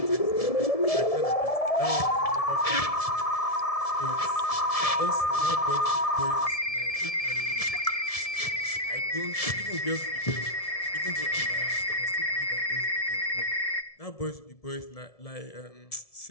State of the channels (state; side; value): late; right; 1.7 ms